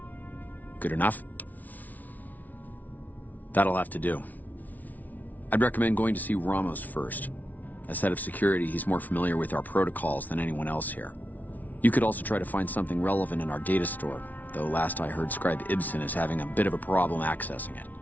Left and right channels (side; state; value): right; late; 0.077 ms